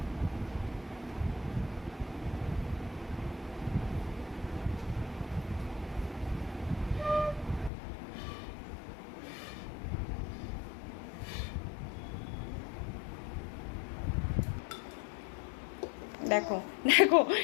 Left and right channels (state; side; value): drops out; right; at 7.7 s